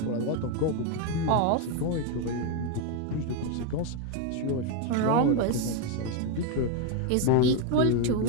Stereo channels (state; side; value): different; both; correlation 0.01